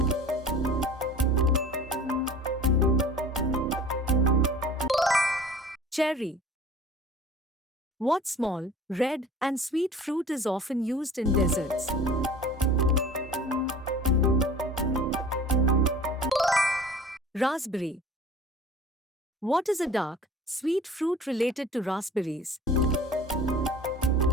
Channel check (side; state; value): both; normal; correlation 0.45